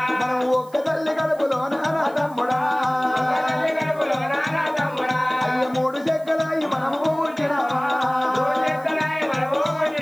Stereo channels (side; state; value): right; noise; hiss, 27 dB below the sound